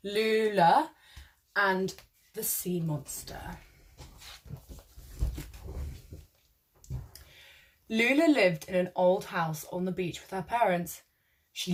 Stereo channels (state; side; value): identical; both; correlation 1.00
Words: Lula and the Sea Monster. Lula lived in an old house on the beach with her parents. She